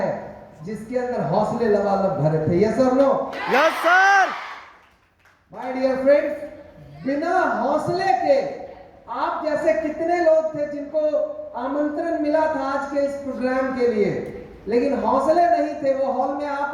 जिसके अंदर हौसले लबालब भरे थे। यस और no? Yes sir. My dear friends, बिना हौसले के आप जैसे कितने लोग थे जिनको आमंत्रण मिला था आज के इस प्रोग्राम के लिए, लेकिन हौसले नहीं थे, वो हॉल में आ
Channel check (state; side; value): identical; both; correlation 1.00